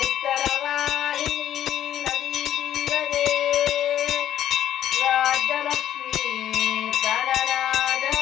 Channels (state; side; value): quieter; right; 11.3 dB